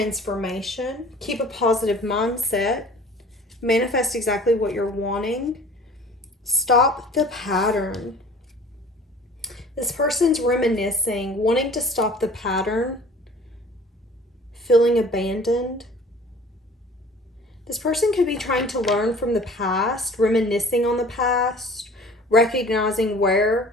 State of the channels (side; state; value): both; normal; correlation 0.47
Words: Keep a positive mindset. Manifest exactly what you're wanting. Stop the pattern. This person's reminiscing, wanting to stop the pattern, feeling abandoned. This person could be trying to learn from the past, reminiscing on the past, recognizing